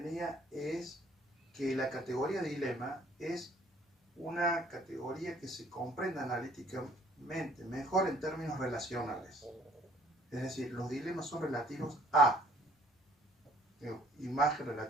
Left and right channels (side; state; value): both; normal; correlation 0.58